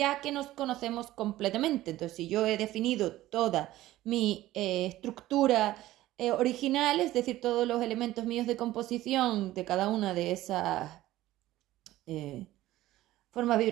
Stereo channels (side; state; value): left; quieter; 15.6 dB